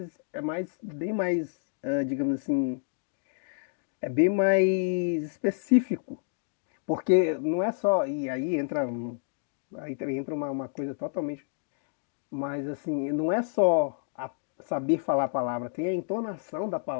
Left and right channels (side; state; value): right; silent; digital silence